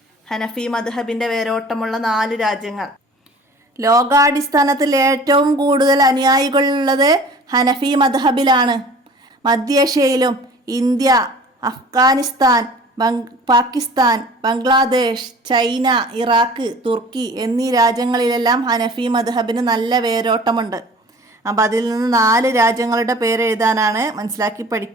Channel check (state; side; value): normal; both; correlation 0.45